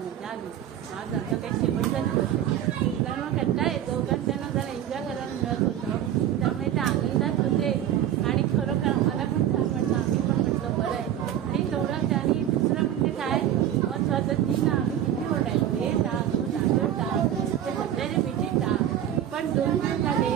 मजा आली. आज आता काही शेवटचा दिवस आहे कारण कंटाळा येतो कारण त्यांना जरा एन्जॉय करायला मिळत होतं त्यामुळे ते आनंदात होते. आणि खरोखर आम्हाला पण छान वाटलं. आम्ही पण म्हटलं बरं आहे. आणि तेवढं आणि दुसरं म्हणजे काय महत्त्वाचं ती ना आम्ही किती ओरडायचो हे टाक तो तांदूळ टाक ते सगळ्याचे पिठी टाक. पण 2 दिवस झाले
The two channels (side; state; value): left; quieter; 10.9 dB